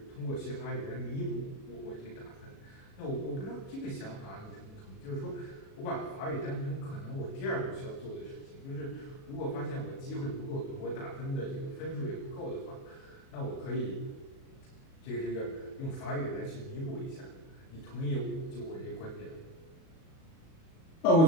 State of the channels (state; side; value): late; right; 37 ms